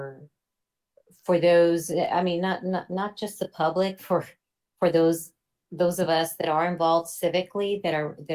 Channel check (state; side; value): identical; both; correlation 1.00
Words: those, I mean, not just the public, for those of us that are involved civically, that